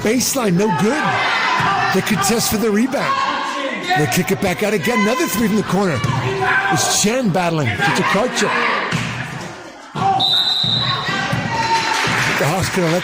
no good. They contest for the rebound. They kick it back out again, another 3 from the corner. It's Chen battling to Tokarczyk. The Hawks could have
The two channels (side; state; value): both; identical; correlation 1.00